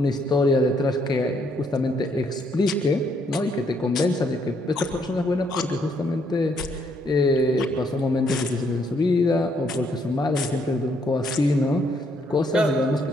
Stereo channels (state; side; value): normal; both; correlation 0.71